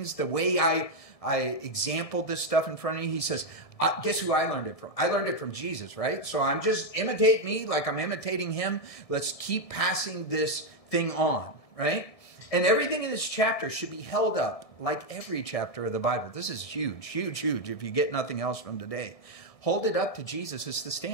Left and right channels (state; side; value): late; right; 1.7 ms